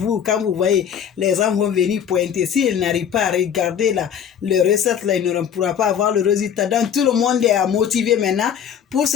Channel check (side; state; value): right; quieter; 8.5 dB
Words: quand vous voyez, les gens vont venir pointer. S'ils n'arrivent pas à regarder le recette, là, ils ne pourront pas avoir le résultat. Donc, tout le monde est motivé maintenant pour